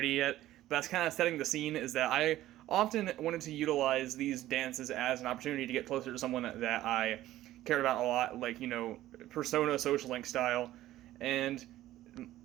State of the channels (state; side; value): quieter; left; 14.6 dB